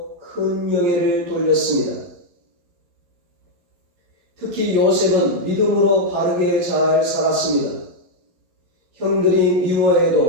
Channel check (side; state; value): left; late; 11 ms